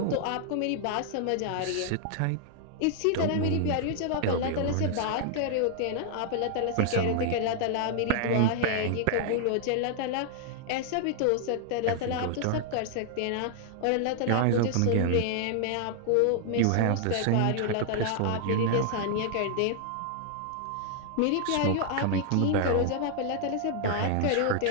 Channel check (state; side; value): different; both; correlation -0.01